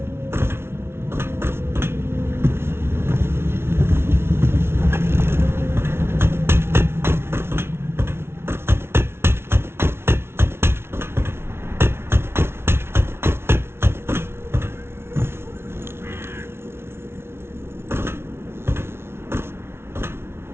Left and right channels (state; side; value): late; left; 0.12 ms